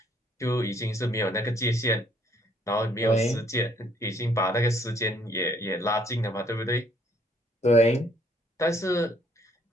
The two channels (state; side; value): normal; both; correlation 0.65